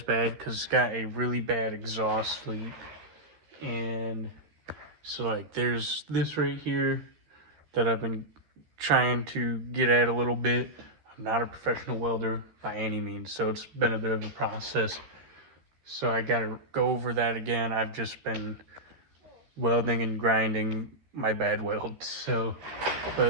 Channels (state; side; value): late; left; 13 ms